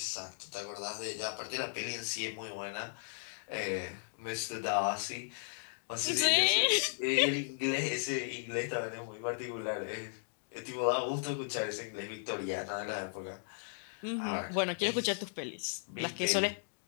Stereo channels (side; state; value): right; silent; digital silence